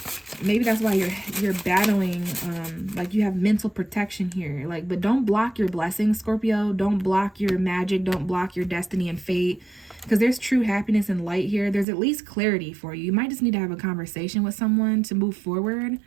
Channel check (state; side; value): drops out; left; at 11.9 s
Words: maybe that's why you're battling, like you have mental protection here. Like, but don't block your blessings, Scorpio. Don't block your magic. Don't block your destiny and fate. Because there's true happiness and light here. There's at least clarity for you. You might just need to have a conversation with someone to move forward.